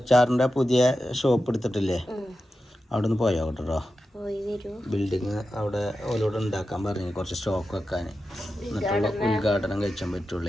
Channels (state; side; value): normal; both; correlation 0.91